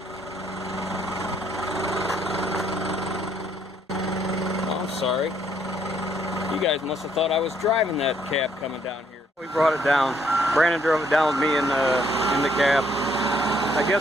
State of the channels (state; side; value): normal; both; correlation 0.68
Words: Oh, I'm sorry. You guys must have thought I was driving that cab coming down here. We brought it down. Brandon drove it down with me in the cab. I